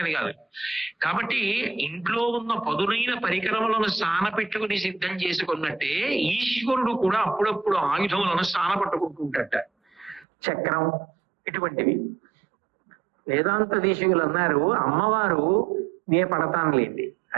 కాదు. కాబట్టి ఇంట్లో ఉన్న పదునైన పరికరములను సానపెట్టుకుని సిద్ధం చేసుకున్నట్టే ఈశ్వరుడు కూడా అప్పుడప్పుడు ఆయుధములను సానపట్టుకుంటుంటట. చక్రం ఇటువంటివి. వేదాంత దేశికులు అన్నారు, అమ్మవారు నే పడతానులేండి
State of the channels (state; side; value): drops out; left; at 10.2 s